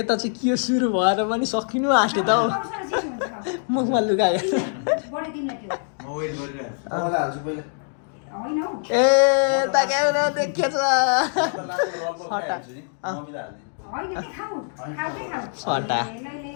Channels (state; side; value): silent; right; 63 dB below the other